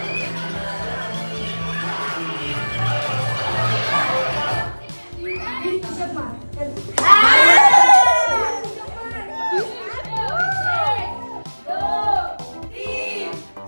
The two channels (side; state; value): both; inverted; correlation -1.00